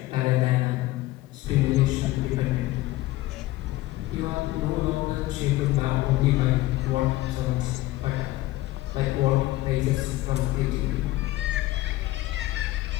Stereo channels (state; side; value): quieter; right; 17.4 dB